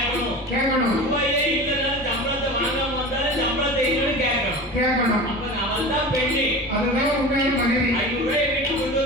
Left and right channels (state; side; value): noise; left; rumble, 21 dB below the sound